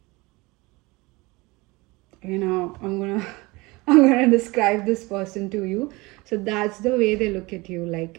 I'm gonna I'm gonna describe this person to you. So that's the way they look at you.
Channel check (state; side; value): quieter; left; 23.5 dB